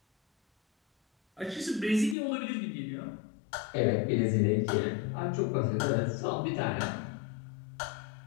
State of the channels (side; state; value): right; drops out; at 2.1 s